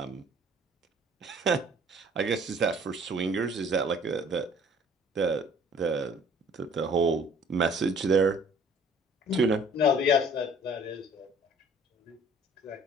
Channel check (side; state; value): both; normal; correlation 0.54